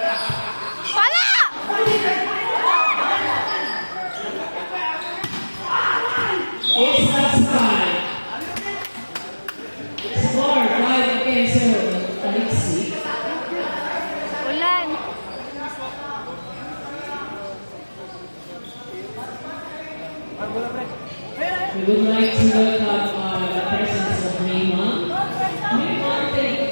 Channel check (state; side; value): inverted; both; correlation -1.00